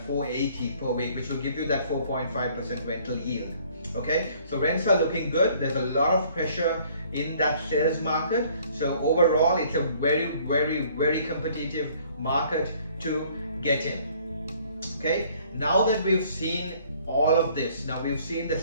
480 per week, which will give you that 4.5% rental yield. Okay, so rents are looking good. There's a lot of pressure in that sales market. So overall, it's a very, very, very competitive market to get in. Okay, now that we've seen all of this, now we've seen the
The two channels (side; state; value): both; inverted; correlation -0.58